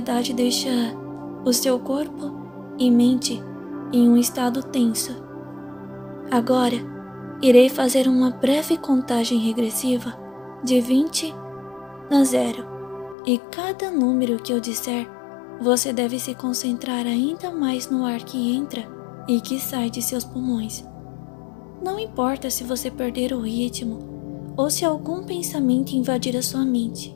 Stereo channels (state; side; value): drops out; right; at 13.2 s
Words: deixa o seu corpo e mente em um estado tenso. Agora, irei fazer uma breve contagem regressiva de 20 a 0 e cada número que eu disser, você deve se concentrar ainda mais no ar que entra e que sai de seus pulmões. Não importa se você perder o ritmo ou se algum pensamento invadir a sua mente,